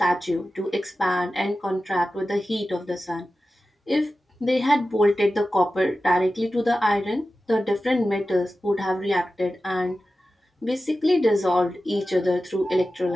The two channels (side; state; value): both; normal; correlation 0.94